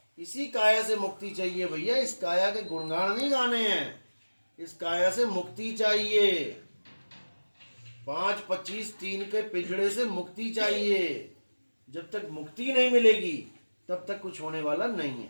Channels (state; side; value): inverted; both; correlation -1.00